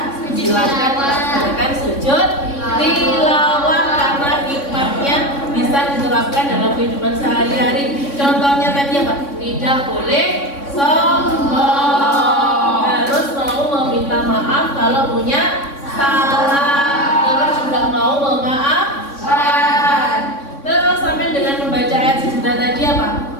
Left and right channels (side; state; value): right; late; 3.6 ms